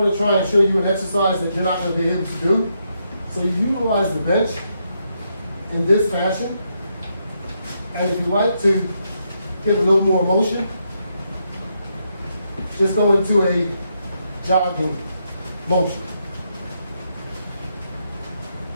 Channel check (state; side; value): inverted; both; correlation -0.80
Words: to try and show you an exercise that you're not going to be able to do. So you utilize the bench in this fashion. And if you like to get a little more motion, just go into a jogging motion.